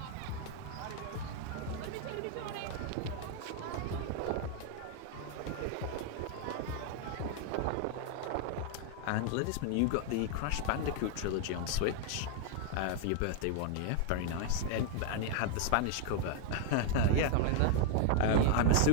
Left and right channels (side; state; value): both; different; correlation 0.00